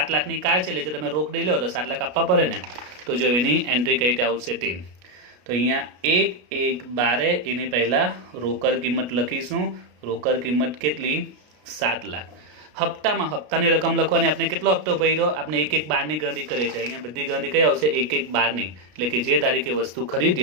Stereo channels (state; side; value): late; left; 33 ms